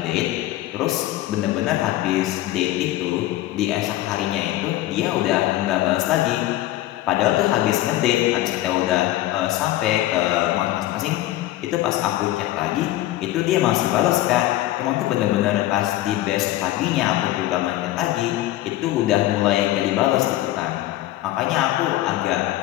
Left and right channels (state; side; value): quieter; right; 15.4 dB